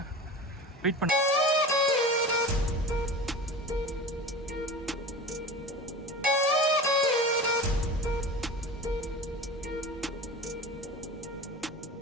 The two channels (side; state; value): both; normal; correlation 0.33